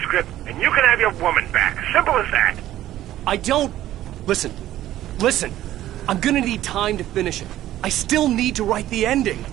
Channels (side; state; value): left; quieter; 13.6 dB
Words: and you can have your woman back. Simple as that. I don't... Listen. Listen. I'm gonna need time to finish it. I still need to write the ending.